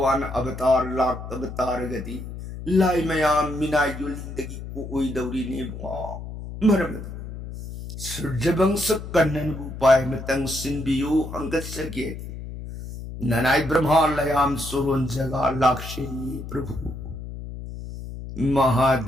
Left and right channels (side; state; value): left; noise; hum, 10 dB below the sound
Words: अवतार लाख अवतार गति लाई मयाम मिना युलिंदगी को ओई दौरी ने बुआ मरमतना सूर्य वंश कन्नन उपाय मतंग सिंबियो अंगत सके ननाई ब्रह्मा लयाम सुरोन जगा लाक्षे प्रभु